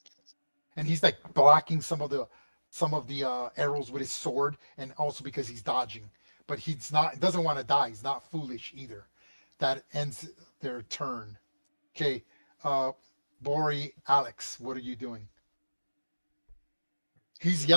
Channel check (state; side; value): inverted; both; correlation -1.00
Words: And he's like blocking some of the arrows with his sword, and also because he's dodging. But doesn't want to die. He's not foolish either. That ends their turn. Okay, Bori, Alex, what are you doing? He's